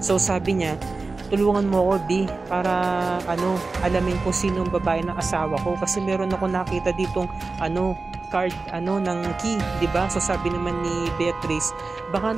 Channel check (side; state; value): left; quieter; 3.8 dB